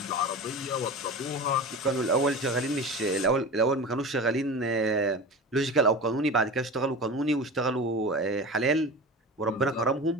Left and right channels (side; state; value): both; normal; correlation 0.31